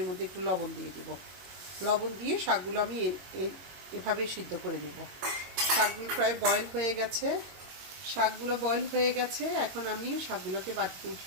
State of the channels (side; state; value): left; late; 22 ms